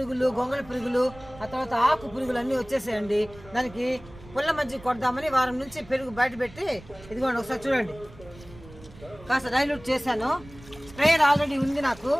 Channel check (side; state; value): right; noise; rumble, 20 dB below the sound